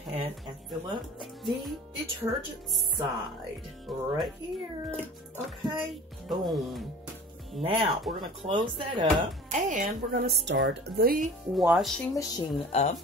and fill up the detergent side right here. Okay, boom. Now we're gonna close that up and we're gonna start the washing machine up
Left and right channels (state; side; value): normal; both; correlation 0.42